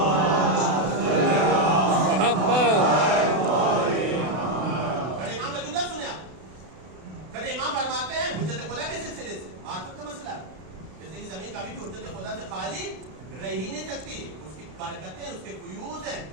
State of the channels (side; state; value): left; late; 32 ms